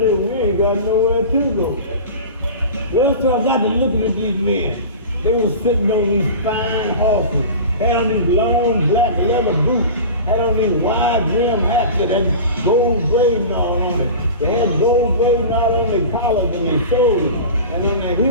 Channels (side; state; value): both; inverted; correlation -0.33